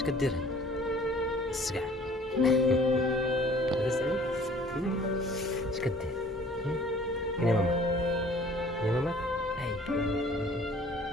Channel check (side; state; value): both; normal; correlation 0.52